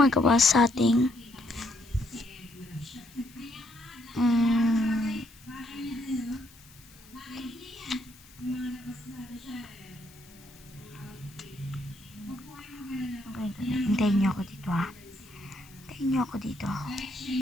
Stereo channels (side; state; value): left; noise; hiss, 23 dB below the sound